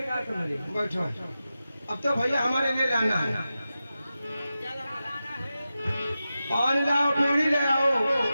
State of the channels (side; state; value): both; inverted; correlation -0.92